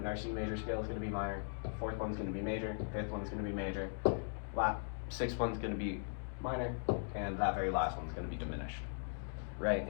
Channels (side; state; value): right; silent; digital silence